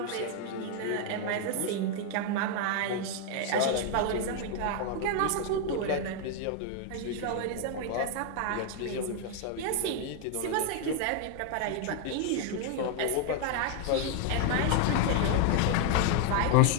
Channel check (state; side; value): different; both; correlation 0.00